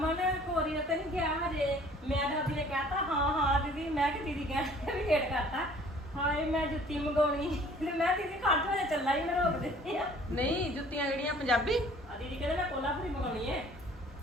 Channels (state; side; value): normal; both; correlation 0.53